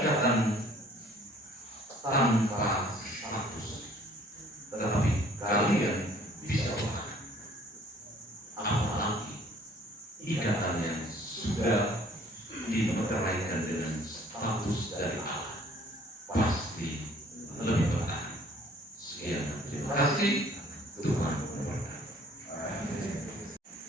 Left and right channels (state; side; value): normal; both; correlation 0.56